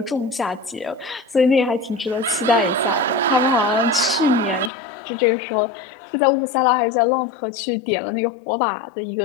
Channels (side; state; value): right; drops out; at 4.7 s